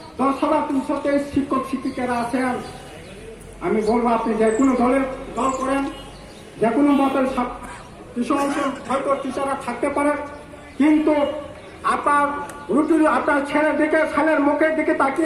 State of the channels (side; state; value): both; identical; correlation 1.00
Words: 10,323 শিক্ষক শিক্ষিকারা আছেন। আমি বলবো আপনি যে কোনো দল করেন, যে কোনো মতের কিছু অংশ হয়তো টিচাররা থাকতে পারে, কিন্তু আপনার আপনার ছেলের মুখের দিকে